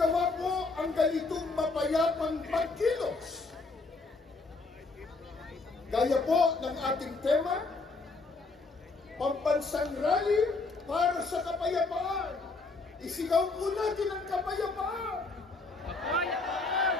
po ang ganitong mapayapang pagkilos. Gaya po ng ating tema, pambansang rally para sa kapayapaan. Isigaw po natin ang kapayapaan! Kapayapaan!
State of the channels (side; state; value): right; quieter; 3.7 dB